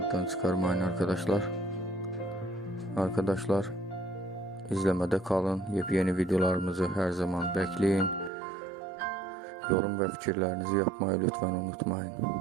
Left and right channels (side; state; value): left; drops out; at 8.3 s